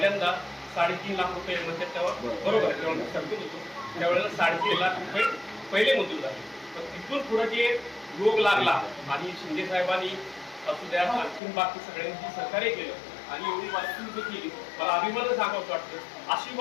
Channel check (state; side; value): drops out; right; at 11.4 s